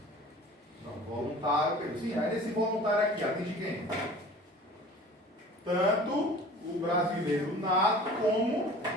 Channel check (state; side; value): normal; both; correlation 0.44